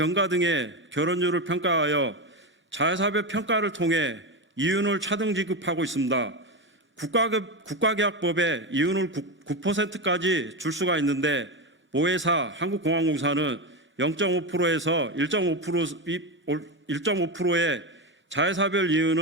등의 결혼율을 평가하여 자회사별 평가를 통해 이윤을 차등 지급하고 있습니다. 국가계약법에 이윤을 9%까지 줄 수가 있는데 모회사 한국공항공사는 0.5%에서 1.5%의 자회사별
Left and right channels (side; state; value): both; normal; correlation 0.15